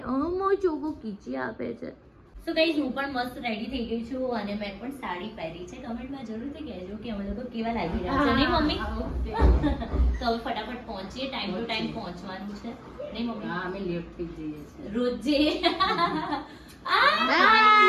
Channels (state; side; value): identical; both; correlation 1.00